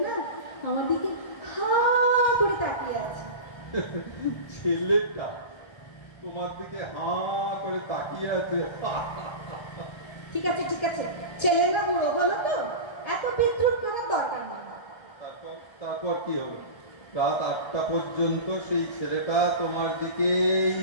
না আমার দিকে হা করে তাকিয়ে আছে। ছেলেটা তোমার দিকে হা করে তাকিয়ে আছে? ঠিক আছে ঠিক আছে, ছেলে না বুড়ো হলো তো, এত বিদ্রুপ করার দরকার নেই। তারপর কি হলো? রাত 8টা পর্যন্ত সেই ছেলেটা তোমার দিকেই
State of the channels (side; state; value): right; late; 1.3 ms